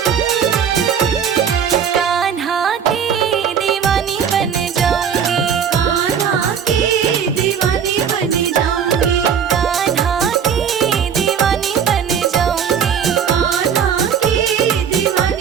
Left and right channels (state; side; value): quieter; left; 7.7 dB